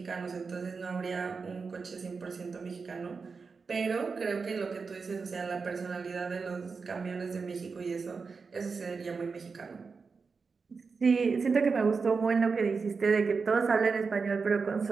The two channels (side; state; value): left; quieter; 4.9 dB